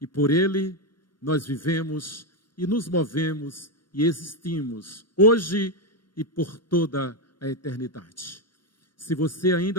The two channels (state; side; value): late; right; 0.72 ms